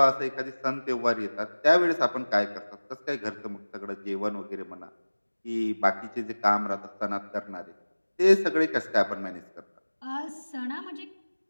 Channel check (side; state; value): both; inverted; correlation -1.00